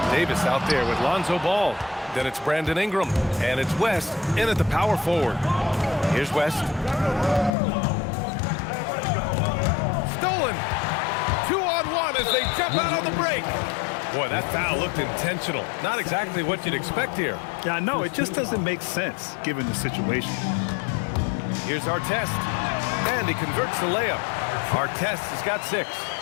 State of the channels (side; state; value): right; drops out; at 7.5 s